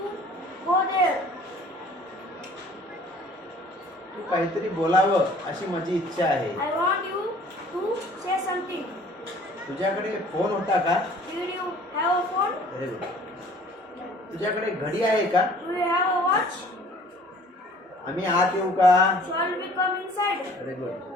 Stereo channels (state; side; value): normal; both; correlation 0.52